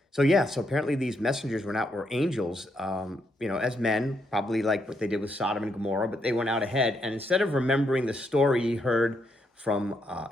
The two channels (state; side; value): normal; both; correlation 0.78